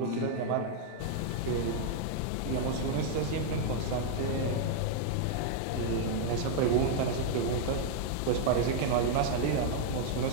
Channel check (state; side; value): different; both; correlation 0.00